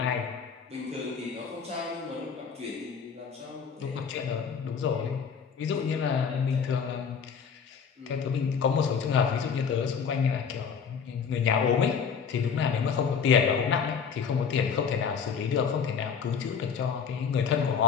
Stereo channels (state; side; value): quieter; right; 6.5 dB